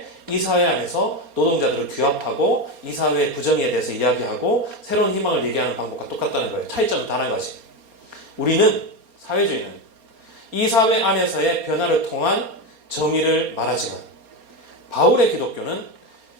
이 사회 안에서 노동자들을 규합하고 이 사회의 부정에 대해서 이야기하고 새로운 희망을 얘기하는 방법과 똑같다는 거예요. 차이점은 단 한 가지. 우리는 사회주의는 이 사회 안에서의 변화를 통한 정의를 말하지만 바울의 기독교는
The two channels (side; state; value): left; late; 4.3 ms